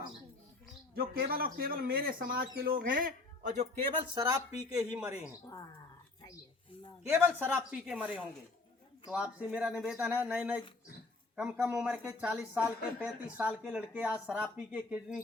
हूँ, जो केवल और केवल मेरे समाज के लोग हैं और जो केवल शराब पी के ही मरे हैं, केवल शराब पी के मरे होंगे। तो आपसे मेरा निवेदन है, नए नए कम उम्र के 40 साल के 35 साल के लड़के आज शराब पी के किडनी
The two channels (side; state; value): right; quieter; 3.4 dB